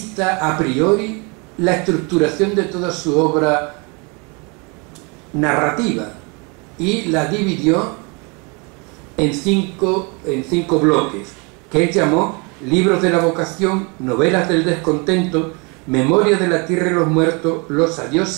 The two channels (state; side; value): quieter; left; 31.1 dB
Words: a priori la estructuración de toda su obra narrativa y la dividió en cinco bloques, que él llamó Libros de la vocación, Novelas del descontento, Memoria de la tierra y los muertos, Los